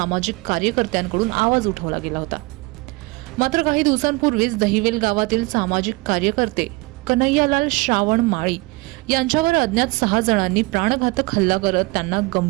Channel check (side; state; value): left; quieter; 24.6 dB